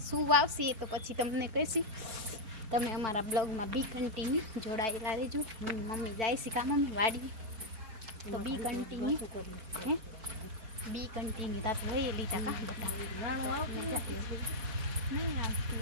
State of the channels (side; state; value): left; late; 4.5 ms